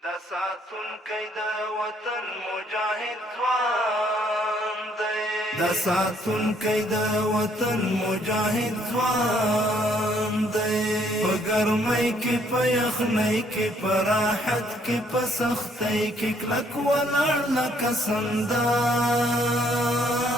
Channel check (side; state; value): both; normal; correlation 0.66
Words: دا ساتونکی د وطن مجاهد ځوان دی دا ساتونکی د وطن مجاهد ځوان دی په ګرمۍ کې په یخنۍ کې په راحت کې په سختۍ کې کلک ولاړ لکه سندان